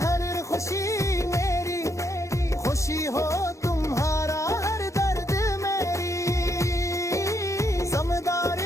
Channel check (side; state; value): right; late; 0.15 ms